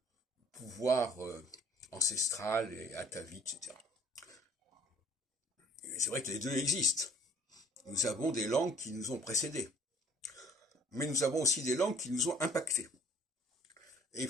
pouvoir ancestral et atavique, etc. Et c'est vrai que les deux existent. Nous avons des langues qui nous ont précédés. Mais nous avons aussi des langues qui nous ont impactés. Et il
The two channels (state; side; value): normal; both; correlation 0.55